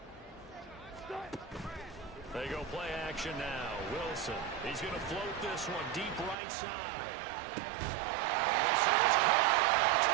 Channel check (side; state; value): left; drops out; at 6.4 s